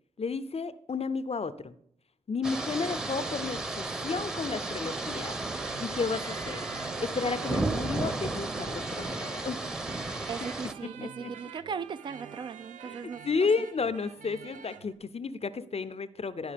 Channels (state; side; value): normal; both; correlation 0.64